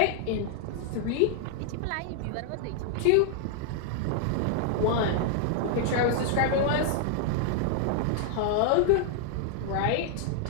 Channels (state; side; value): different; both; correlation 0.00